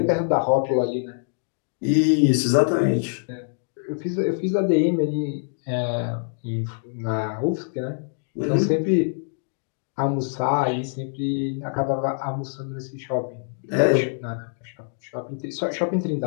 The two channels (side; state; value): right; silent; digital silence